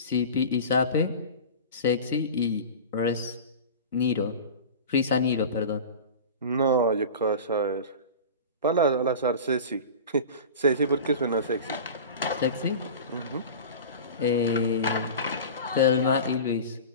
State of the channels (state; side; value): inverted; both; correlation -0.33